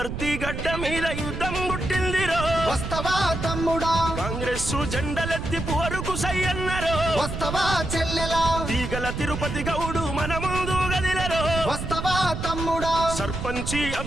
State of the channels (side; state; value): right; noise; rumble, 5 dB below the sound